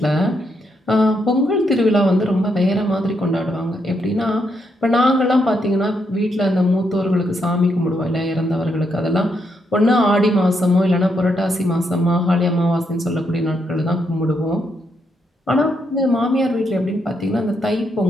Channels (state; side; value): normal; both; correlation 0.78